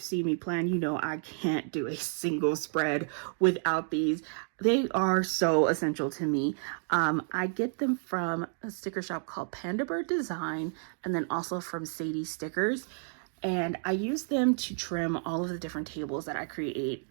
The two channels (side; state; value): left; silent; 57 dB below the other